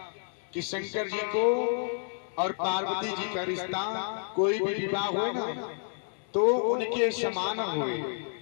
कि शंकर जी को और पार्वती जी का रिश्ता कोई भी विवाह हो ना तो उनके समान हुए।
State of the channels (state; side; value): silent; right; digital silence